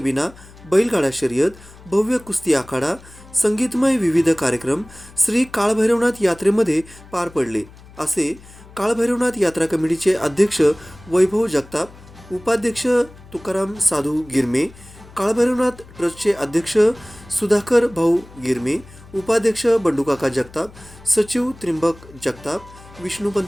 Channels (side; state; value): left; noise; hum, 21 dB below the sound